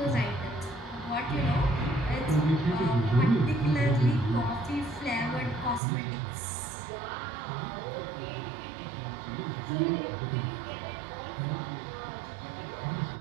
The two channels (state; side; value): drops out; left; at 5.8 s